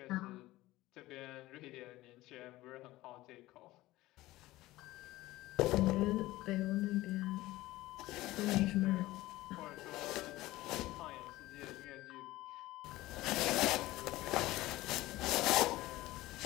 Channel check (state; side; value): quieter; right; 17.6 dB